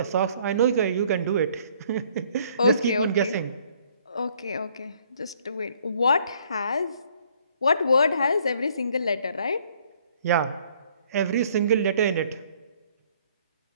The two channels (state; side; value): inverted; both; correlation -0.62